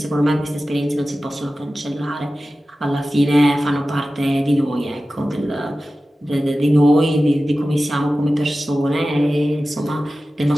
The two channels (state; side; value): normal; both; correlation 0.95